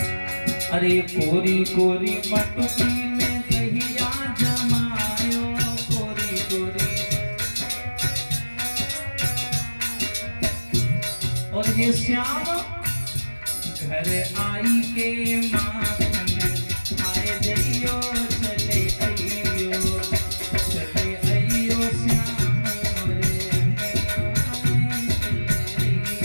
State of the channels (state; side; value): inverted; both; correlation -1.00